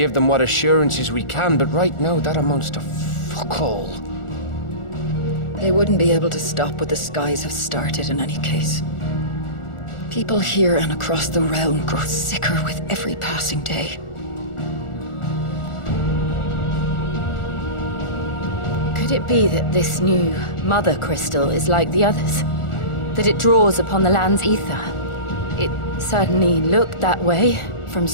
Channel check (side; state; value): right; late; 1.4 ms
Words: them what assurances we can, but right now that amounts to fuck all. They wouldn't be able to stop what the skies have started in any case. People here and across the realm grow sicker with every passing day. Could Could it be that this new mother crystal is like the others? That it draws upon the land's ether? It certainly looked that way from